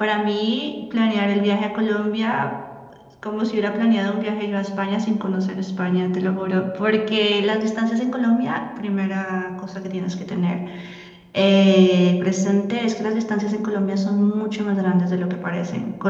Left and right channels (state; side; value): identical; both; correlation 1.00